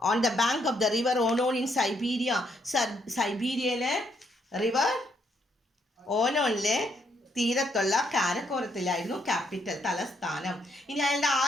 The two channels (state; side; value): normal; both; correlation 0.73